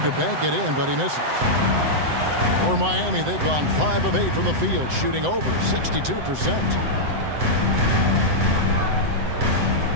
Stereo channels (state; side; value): late; left; 7.9 ms